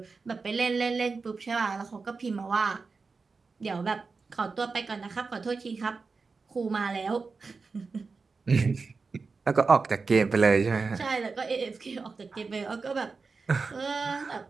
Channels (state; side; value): quieter; left; 4.4 dB